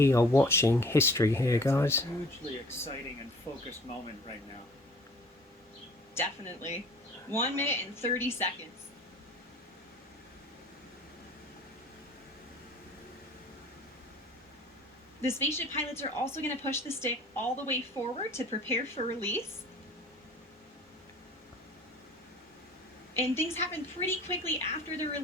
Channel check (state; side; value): normal; both; correlation 0.49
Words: are watching history here, guys. It's a hugely exciting and focused moment right now. Definitely. 1 minute and 30 seconds. The spaceship pilots are also going to push the stick all the way forward to prepare for release. And things happen pretty quickly after the